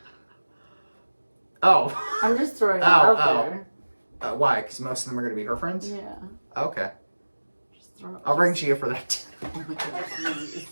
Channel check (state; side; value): inverted; both; correlation -1.00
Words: Oh. I'm just throwing it Oh, out oh. there. Why? Because most of them are going to be her friends? Yeah. Okay. Just throw it. I'll ring Gia for that. Oh my god, please.